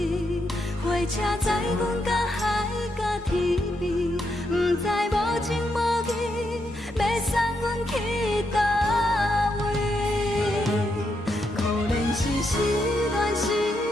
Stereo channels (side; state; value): both; normal; correlation 0.81